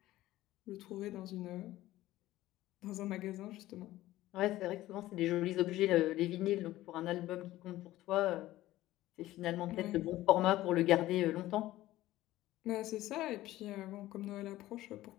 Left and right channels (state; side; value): quieter; right; 15.8 dB